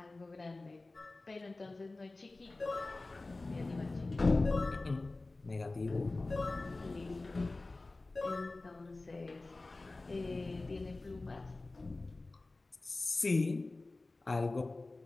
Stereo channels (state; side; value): quieter; right; 3.2 dB